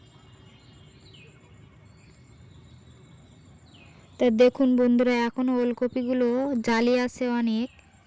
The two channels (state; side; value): identical; both; correlation 1.00